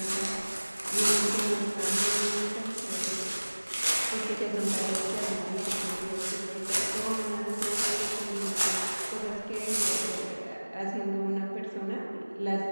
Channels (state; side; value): inverted; both; correlation -1.00